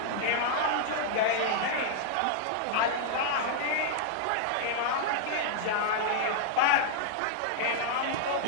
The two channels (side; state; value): both; different; correlation -0.01